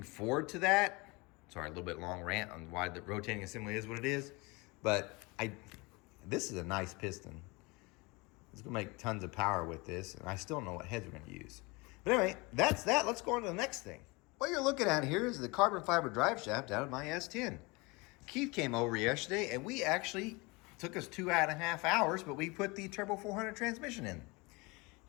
forward to that. Sorry, a little bit long rant on why the rotating assembly is what it is. But this is a nice piston. It's going to make tons of power with this, and I still don't know what heads we're going to use. But anyway, that's that. Let's go on to the next thing. What you're looking at here is the carbon fiber drive shaft out of my S10. Keith came over yesterday, and we actually took us 2.5 hours, but we put the Turbo 400 transmission in.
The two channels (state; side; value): quieter; right; 26.0 dB